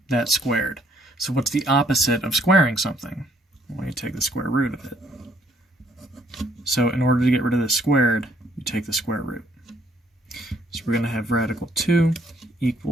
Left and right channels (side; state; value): both; normal; correlation 0.66